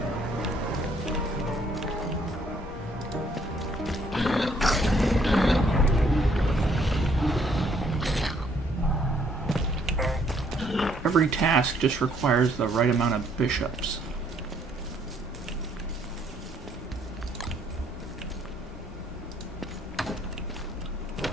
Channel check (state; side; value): normal; both; correlation 0.66